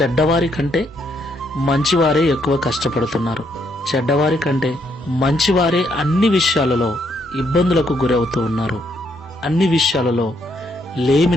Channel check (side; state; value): both; normal; correlation 0.73